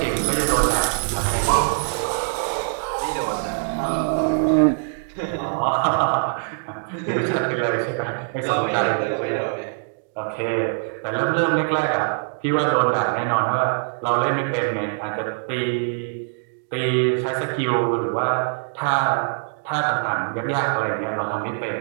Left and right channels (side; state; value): left; silent; digital silence